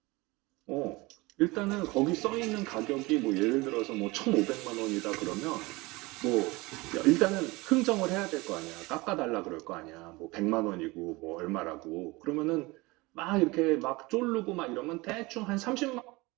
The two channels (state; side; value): quieter; left; 23.0 dB